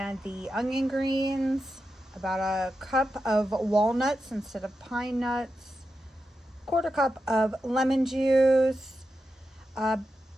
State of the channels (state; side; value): normal; both; correlation 0.89